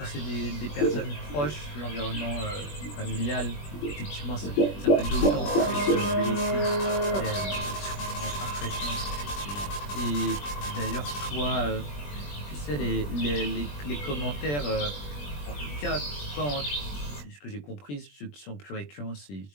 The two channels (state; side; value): late; right; 20 ms